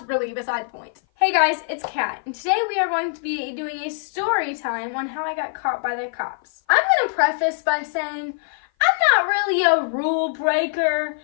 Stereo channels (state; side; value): silent; right; 56 dB below the other